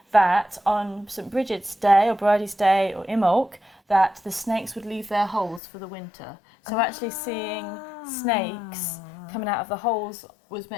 that on St Bridget's Day or Bridie's Day or Imbolc, that the snakes would leave their holes for the winter. So actually seeing snakes coming out of the holes was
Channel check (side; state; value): right; drops out; at 5.6 s